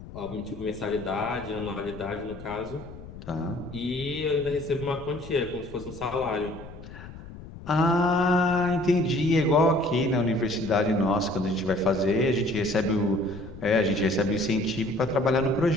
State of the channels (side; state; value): left; noise; rumble, 15 dB below the sound